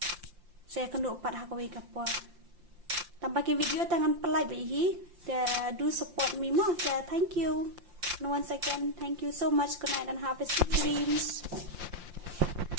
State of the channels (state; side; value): late; left; 5.7 ms